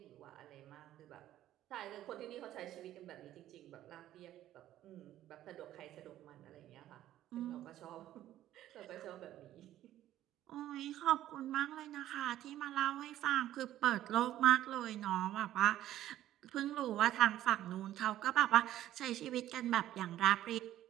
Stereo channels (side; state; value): left; quieter; 13.1 dB